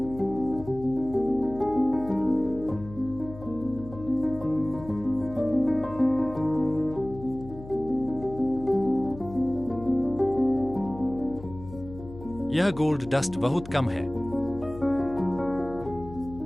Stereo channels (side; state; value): left; noise; hum, 15 dB below the sound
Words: यह गोल्ड डस्ट बहुत कम है।